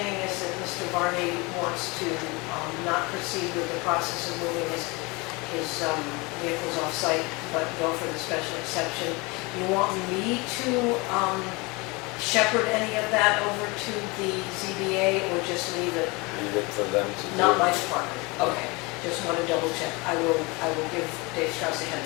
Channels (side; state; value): right; quieter; 26.1 dB